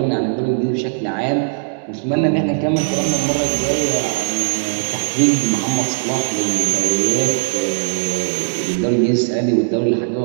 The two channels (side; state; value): left; silent; digital silence